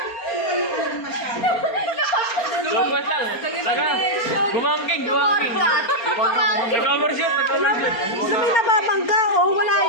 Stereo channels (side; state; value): right; late; 4.3 ms